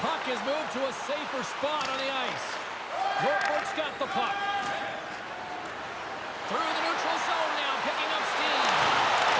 puck is moved to a safer spot on the ice. Norfolk's got the puck. Through the neutral zone now, picking up steam.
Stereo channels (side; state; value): both; identical; correlation 1.00